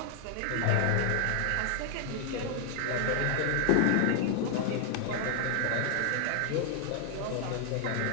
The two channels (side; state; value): both; different; correlation 0.00